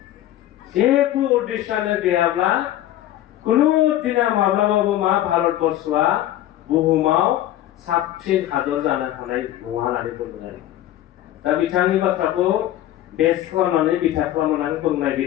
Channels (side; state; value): right; quieter; 13.4 dB